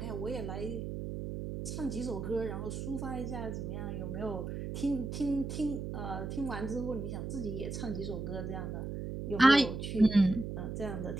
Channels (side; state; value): right; noise; hum, 5 dB below the sound